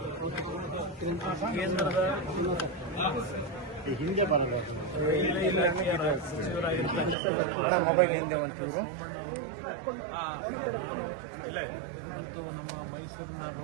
ಕೇಂದ್ರದ ಹಿಂದೆ ಬರಲ್ಲ ರೈಲ್ವೆ ಇಲಾಖೆಯ ಸಚಿವರಾಗಿರ್ತಕ್ಕಂಥ ಸೋಮಣ್ಣ ಅವರು ಮತ್ತು ನಮ್ಮ ಮೈಸೂರಿನ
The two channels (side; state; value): left; drops out; at 7.2 s